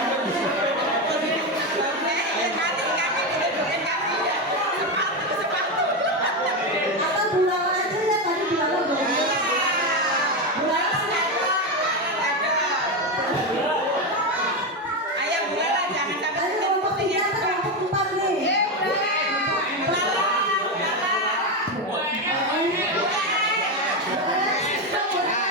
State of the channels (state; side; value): normal; both; correlation 0.12